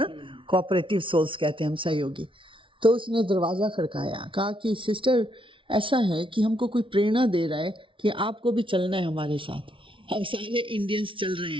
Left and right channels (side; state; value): left; late; 0.25 ms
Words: कोऑपरेटिव सोल्स कहते हैं हम, सहयोगी। तो उसने दरवाज़ा खड़काया, कहा कि सिस्टर ऐसा है कि हमको कोई प्रेरणा दे रहा है कि आपको भी चलना है हमारे साथ, हम सारे इंडियंस चल रहे